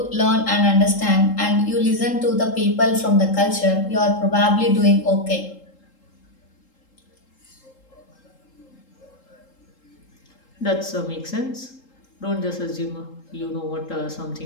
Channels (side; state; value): right; late; 3.8 ms